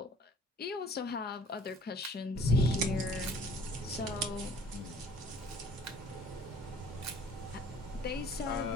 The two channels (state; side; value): normal; both; correlation 0.53